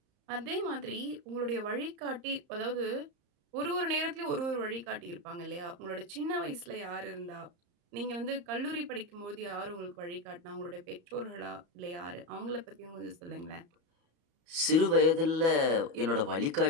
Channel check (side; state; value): left; late; 34 ms